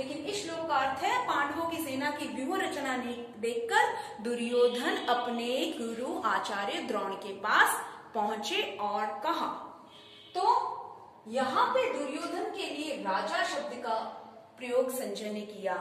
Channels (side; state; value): both; identical; correlation 1.00